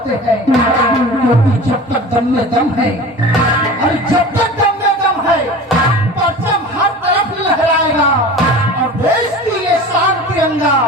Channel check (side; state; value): both; normal; correlation 0.37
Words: हैं, क्योंकि जब तक दम में दम है, और जब तक दम में दम है, परचम हर तरफ लहराएगा और देश की ये शान तिरंगा